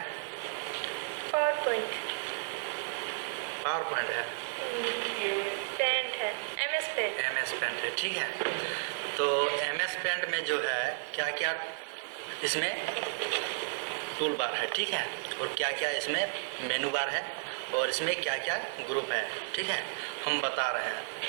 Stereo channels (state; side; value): silent; left; 56 dB below the other